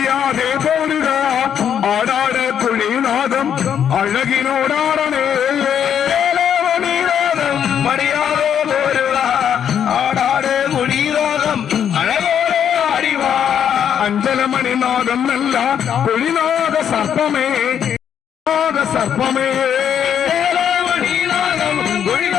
പോരുക ആടാട് കുളിനാഥം അഴകിനോടാടണേ മണിനാഥം മര്യാദ പോരുക ആടാട് കുളിനാഥം അഴകോടെ ആടിവ അഞ്ചലമണിനാഥം നല്ല കുളിനാഥ സർപ്പമേ സർപ്പമേ മണിനാഥം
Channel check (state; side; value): quieter; right; 8.8 dB